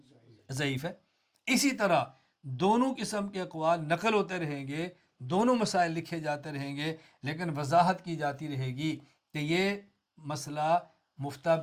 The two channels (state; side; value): identical; both; correlation 1.00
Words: ضعیف ہے۔ اسی طرح دونوں قسم کے اقوال نقل ہوتے رہیں گے، دونوں مسائل لکھے جاتے رہیں گے، لیکن وضاحت کی جاتی رہے گی کہ یہ مسئلہ مفتہ